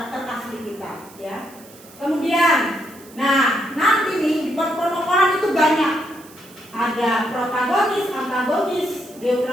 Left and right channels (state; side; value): noise; right; hiss, 22 dB below the sound